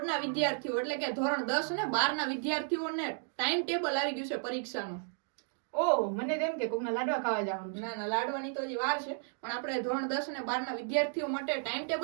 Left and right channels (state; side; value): silent; left; 56 dB below the other